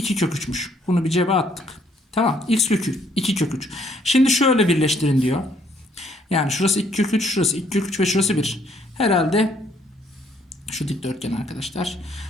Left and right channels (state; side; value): normal; both; correlation 0.67